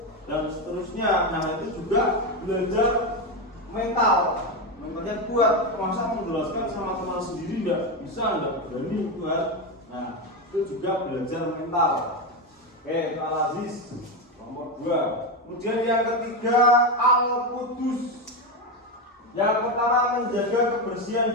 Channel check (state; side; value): normal; both; correlation 0.12